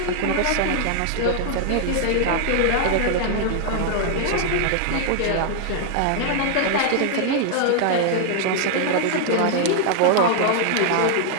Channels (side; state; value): both; different; correlation 0.00